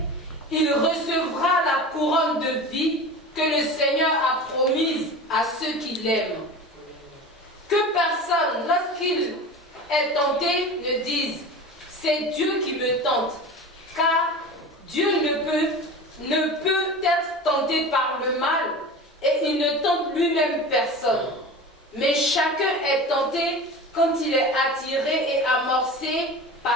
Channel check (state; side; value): normal; both; correlation 0.33